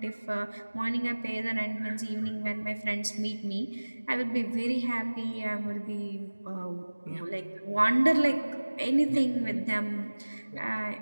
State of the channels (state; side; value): inverted; both; correlation -1.00